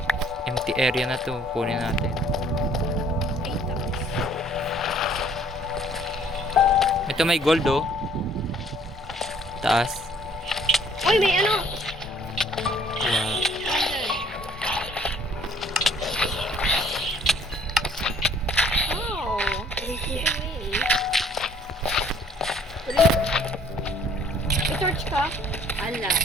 Empty area na to. Kunin natin. Ito may gold oh. Taas. Uy, may ano? Wow. Oh, may torch ka? Ala.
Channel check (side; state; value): both; normal; correlation 0.59